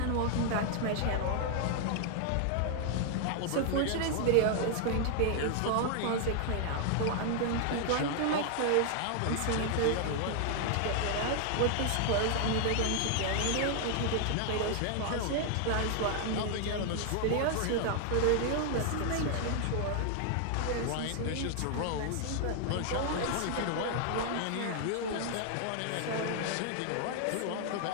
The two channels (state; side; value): different; both; correlation 0.00